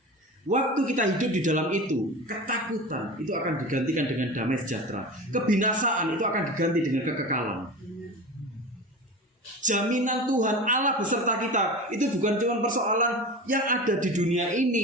Waktu kita hidup di dalam itu, ketakutan itu akan digantikan dengan damai sejahtera. Kebinasaan itu akan diganti dengan kekekalan. Jaminan Tuhan Allah beserta kita itu bukan cuma persoalan yang ada di dunia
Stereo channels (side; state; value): both; normal; correlation 0.31